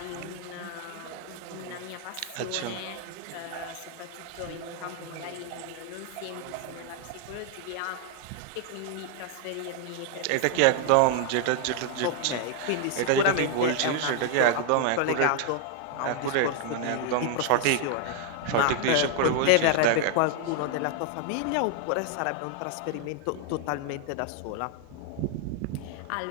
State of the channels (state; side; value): different; both; correlation 0.00